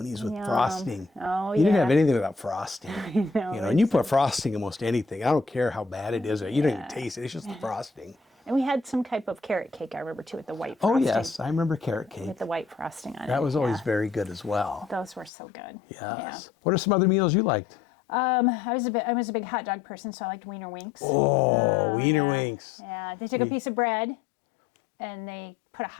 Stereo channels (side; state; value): right; drops out; at 15.3 s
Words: with frosting. Oh, You didn't yeah. have anything without frosting. And you put frosting in almost anything. I don't care how bad it is. You don't even taste it. It's just the frosting. And we had some type of carrot cake, I remember, too, with the white Oh, frosting. yes. I remember carrot cake. With the white frosting on it. That was always Yeah. very good as well. Those were so good. Yes. Yeah. What are some other meals you liked? I was a big hot dog person, so I liked Wiener Winks. Oh, Wiener yeah. Winks. Yeah, they took a piece of bread and they put a